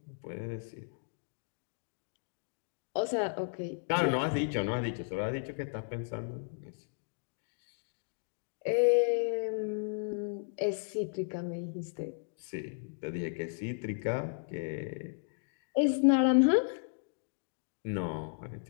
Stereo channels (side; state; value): right; silent; digital silence